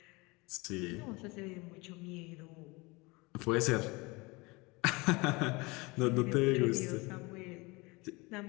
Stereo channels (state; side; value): quieter; right; 25.1 dB